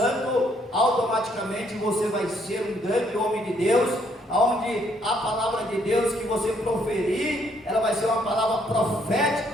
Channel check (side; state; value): both; normal; correlation 0.69